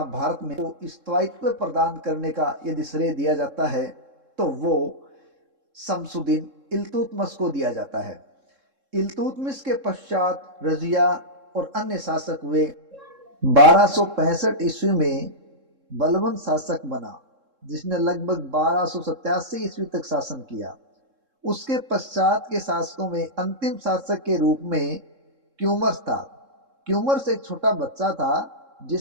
भारत में स्थायित्व प्रदान करने का यदि श्रेय दिया जाता है तो वो शमसुद्दीन इल्तुतमिश को दिया जाता है। इल्तुतमिश के पश्चात रजिया और अन्य शासक हुए। 1265 ईस्वी में बलबन शासक बना, जिसने लगभग 1287 ईस्वी तक शासन किया। उसके पश्चात के शासकों में अंतिम शासक के रूप में क्यूमर्स था। क्यूमर्स एक छोटा बच्चा था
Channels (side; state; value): left; late; 3.7 ms